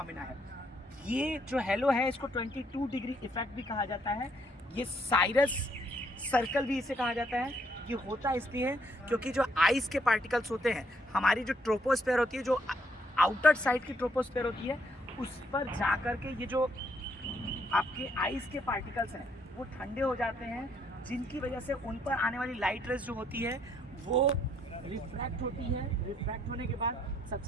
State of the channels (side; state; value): both; normal; correlation 0.70